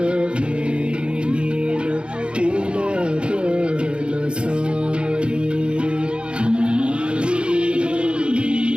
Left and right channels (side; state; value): left; late; 0.055 ms